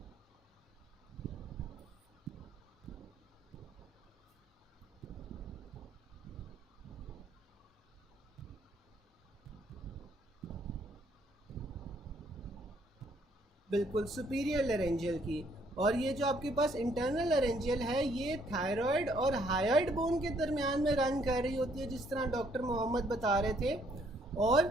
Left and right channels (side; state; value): both; normal; correlation 0.67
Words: बिल्कुल सुपीरियर लेरेंजियल की। और ये जो आपके पास इंटरनल लेरेंजियल है ये थायराइड और हायोइड बोन के दरमियान में रन कर रही होती है, जिस तरह डॉक्टर मोहम्मद बता रहे थे। और